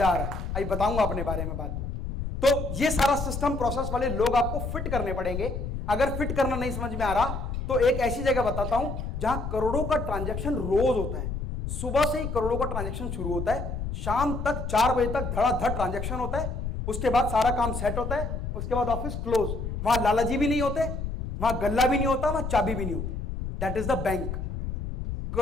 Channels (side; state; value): left; noise; rumble, 4 dB below the sound